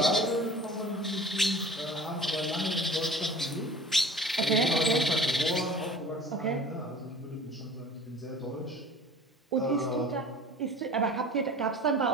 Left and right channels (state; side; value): normal; both; correlation 0.42